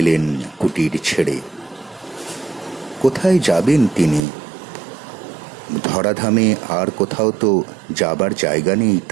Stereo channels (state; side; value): drops out; left; at 4.2 s